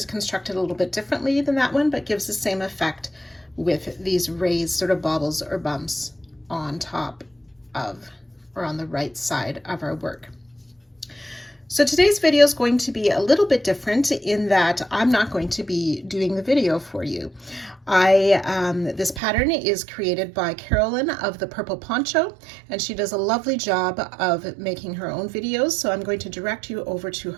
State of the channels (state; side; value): drops out; left; at 19.2 s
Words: constructed a little bit differently than that one, but gives the same effect with these raised sort of baubles or bumps on top of or on the right side of our work. So today's video is going to be a little bit different in that I'm not going to be doing the video for you. This pattern is created by Carolyn of the Purple Poncho, and she does a lovely job of making her own videos. So I'm going to direct you over to